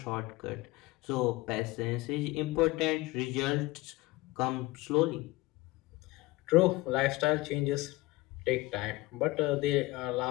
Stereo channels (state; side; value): quieter; right; 20.5 dB